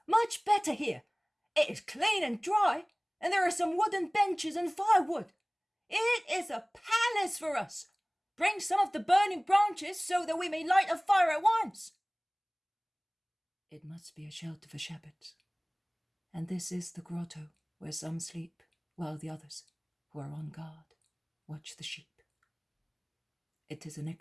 much better here. It is clean and dry, and there are some wooden benches and firewood. It is a palace for us. Bring some of the burning branches so that we may light a fire at once. It must be a shelter for shepherds, and this is the grotto where some sleep while the others, who are on guard, watch the sheep. It is an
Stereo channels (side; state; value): both; identical; correlation 1.00